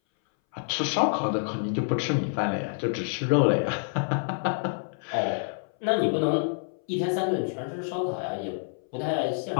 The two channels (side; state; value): right; silent; 60 dB below the other